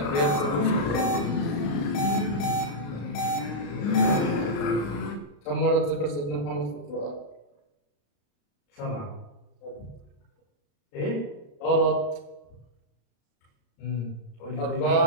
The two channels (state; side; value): late; right; 35 ms